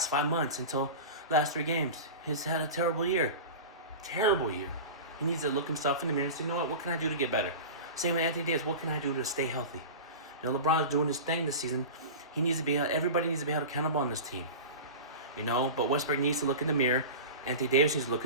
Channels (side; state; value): both; inverted; correlation -0.30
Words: 5 months until last 3 games. He's had a terrible year. Terrible year. He needs to look himself in the mirror and say, you know what can I do to get better? Same with Anthony Davis, what can I do to stay healthy? You know, LeBron's doing his thing this season. Everybody needs to be held accountable on this team. You know, but Westbrook needs to look in the mirror. Anthony Davis needs to look